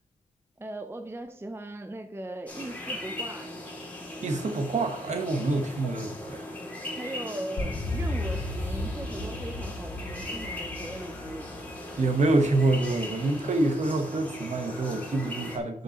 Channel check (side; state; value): both; normal; correlation 0.75